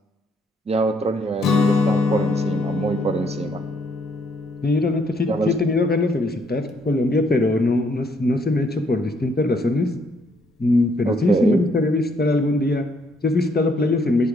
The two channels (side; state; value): both; normal; correlation 0.69